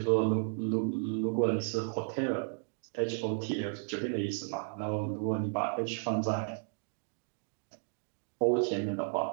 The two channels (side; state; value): left; silent; digital silence